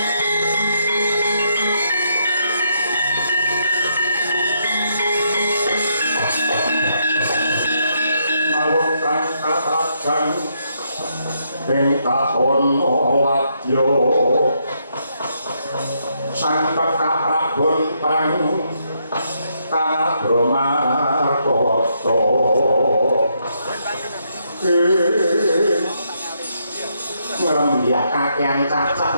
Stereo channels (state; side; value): inverted; both; correlation -0.76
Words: ing tahun wadya sang Prabon prang Kabramarkata kakyang cacah